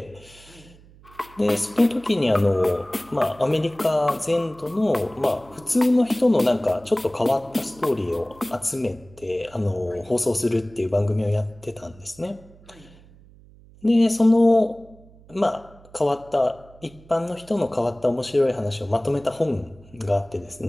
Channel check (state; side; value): noise; right; hum, 24 dB below the sound